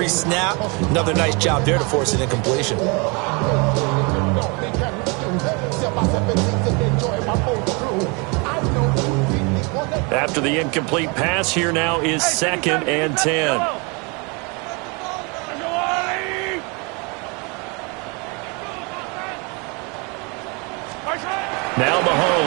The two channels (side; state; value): left; quieter; 30.8 dB